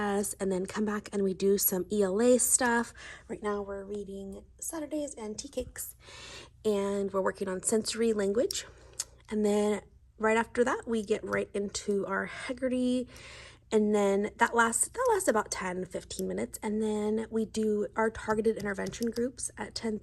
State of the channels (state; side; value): identical; both; correlation 1.00